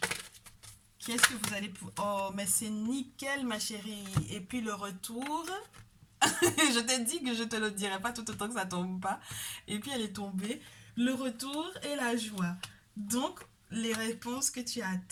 qu'est-ce que vous allez... oh, mais c'est nickel, ma chérie. Et puis le retour... je t'ai dit que je te le dirai pas tout autant que ça tombe pas. Et puis elle est tombée. Le retour et la joie. Donc, les réponses que tu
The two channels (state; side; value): identical; both; correlation 1.00